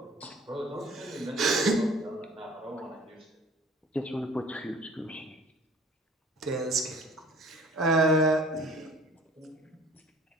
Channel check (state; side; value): normal; both; correlation 0.50